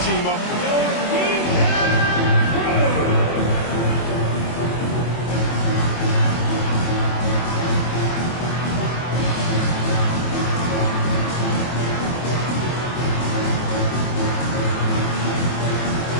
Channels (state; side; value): late; right; 24 ms